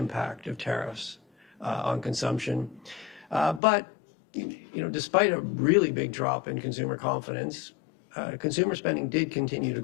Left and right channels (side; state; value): right; drops out; at 3.6 s